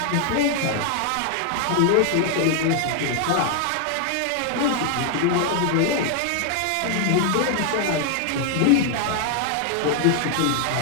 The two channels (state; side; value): different; both; correlation 0.00